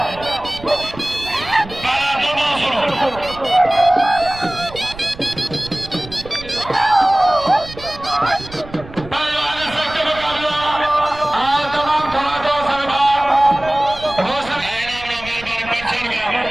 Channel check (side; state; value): right; noise; rumble, 16 dB below the sound